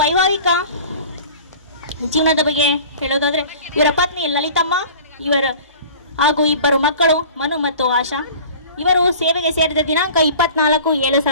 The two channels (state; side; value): inverted; both; correlation -0.43